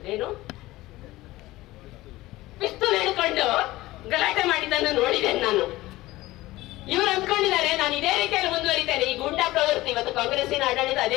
ಪಿಸ್ತೂಲ್ ಹಿಡ್ಕೊಂಡು ಗಲಾಟೆ ಮಾಡಿದ್ದನ್ನು ನೋಡಿದ್ದೇನೆ ನಾನು. ಇವರು ಅಂದ್ಕೊಂಡಿದ್ದಾರೆ ನಾನು ಇದೇ ರೀತಿಯಲ್ಲಿ ಮುಂದುವರಿತೇನೆ. ಈ ಗೂಂಡಾ ಪ್ರವೃತ್ತಿ ಇವತ್ತು ಕಾಂಗ್ರೆಸ್ಸಿನ ಆಡಳಿತ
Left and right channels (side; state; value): right; quieter; 18.1 dB